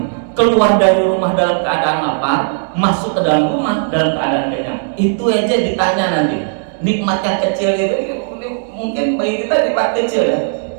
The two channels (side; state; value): left; silent; 68 dB below the other